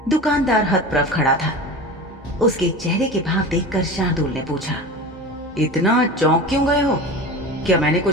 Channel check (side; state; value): both; normal; correlation 0.32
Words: दुकानदार हतप्रभ खड़ा था। उसके चेहरे के भाव देखकर शार्दुल ने पूछा, इतना चौंक क्यों गए हो? क्या मैंने